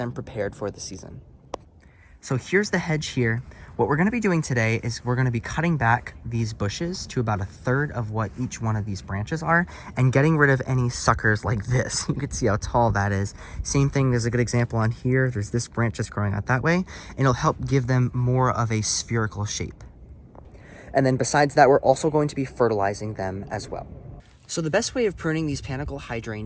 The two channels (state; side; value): identical; both; correlation 1.00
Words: prepared for the season. So here's the hedge here. What we're going to be doing today is we're going to be cutting back these bushes to about 1/3 of what each one of these branches are and getting rid of any suckers like this. You can see how tall that is. Same thing, there's a good example on here. There's this branch that's growing out that way, and it'll help give them more of a spherical shape. And then besides that, we're also going to be fertilizing them as well. So the best way of pruning these panicle